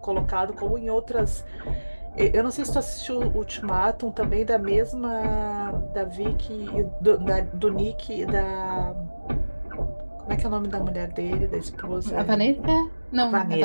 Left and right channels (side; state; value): both; inverted; correlation -1.00